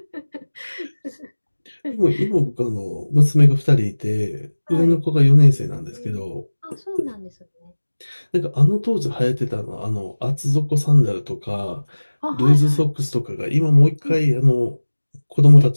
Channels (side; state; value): both; inverted; correlation -1.00